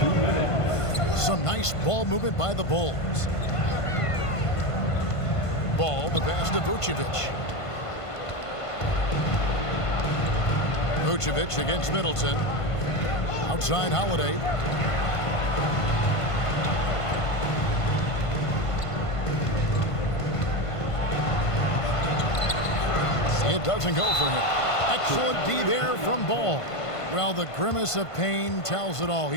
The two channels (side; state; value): right; late; 1.5 ms